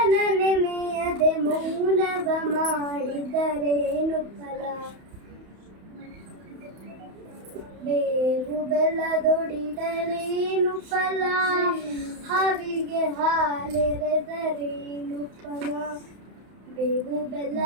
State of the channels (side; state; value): left; late; 31 ms